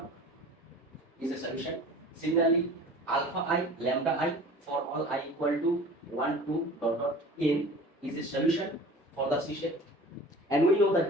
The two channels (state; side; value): normal; both; correlation 0.41